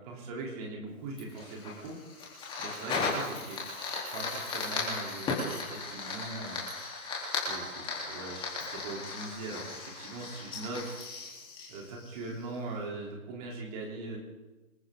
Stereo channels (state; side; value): normal; both; correlation 0.02